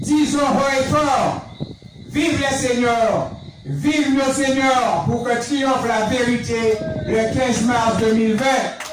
Disons haut et fort, vive les seigneurs, vive nos seigneurs pour que triomphe la vérité le 15 mars 2020.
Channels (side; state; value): both; identical; correlation 1.00